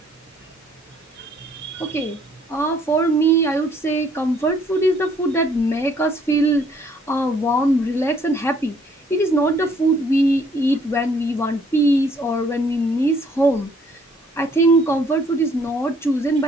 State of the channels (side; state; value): both; normal; correlation 0.63